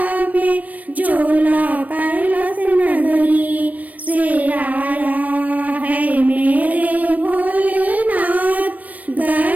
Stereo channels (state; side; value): late; left; 0.076 ms